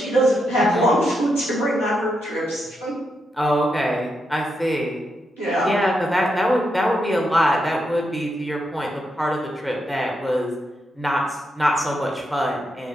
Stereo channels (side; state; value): both; normal; correlation 0.83